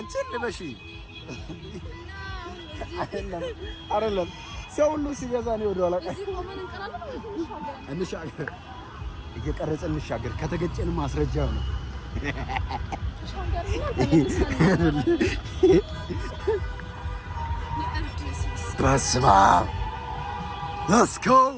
ልበሺ አይደለም ሰው ሁሉ ሲገዛ ነው ወደ ኋላ እንሻገር እየቀረጸ እንሻገር ከተገጨን ማስረጃው ነው በስመ አብ let's go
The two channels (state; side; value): identical; both; correlation 1.00